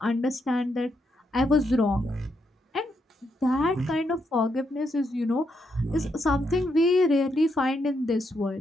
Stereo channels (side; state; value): both; normal; correlation 0.80